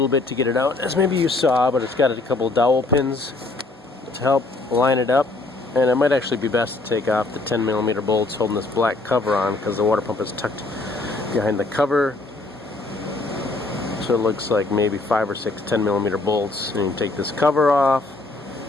bit to get it out, as maybe you saw, but it's got a couple of dowel pins to help line it up. And it might actually be best to take off the 10mm bolts holding this black cover on, because the water pump is tucked behind the cover. So it looks like maybe 5 or 6 10mm bolts. And you can take this cover off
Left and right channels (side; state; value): right; quieter; 3.2 dB